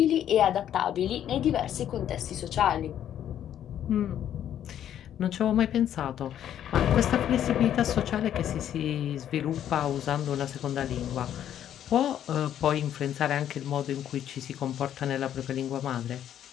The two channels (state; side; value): quieter; right; 10.5 dB